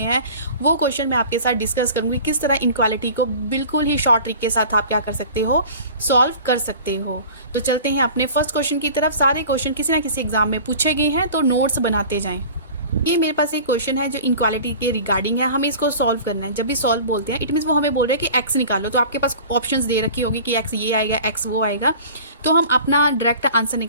वो क्वेश्चन मैं आपके साथ डिस्कस करूँगी, किस तरह इनइक्वालिटी को बिल्कुल ही शॉर्ट ट्रिक के साथ आप क्या कर सकते हो, सॉल्व कर सकते हो। तो चलते हैं अपने फर्स्ट क्वेश्चन की तरफ। सारे क्वेश्चन किसी ना किसी एग्जाम में पूछे गए हैं, तो नोट्स बनाते जाएँ। ये मेरे पास एक क्वेश्चन है जो इनक्वालिटी के रिगार्डिंग है, हमें इसको सॉल्व करना है। जब भी सॉल्व बोलते हैं इट मीन्स वो हमें बोल रहे हैं कि एक्स निकालो, तो आपके पास ऑप्शंस दे रखी होगी कि एक्स ये आएगा, एक्स वो आएगा, तो हम अपना डायरेक्ट आंसर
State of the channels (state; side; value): inverted; both; correlation -0.41